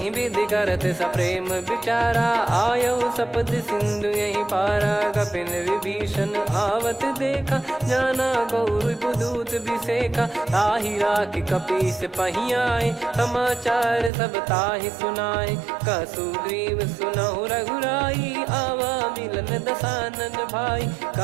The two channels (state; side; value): drops out; left; at 14.1 s